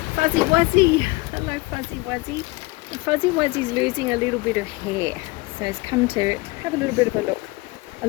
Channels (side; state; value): right; quieter; 23.1 dB